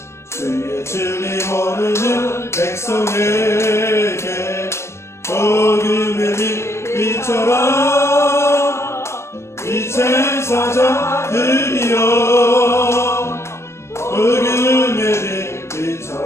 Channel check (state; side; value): late; right; 0.13 ms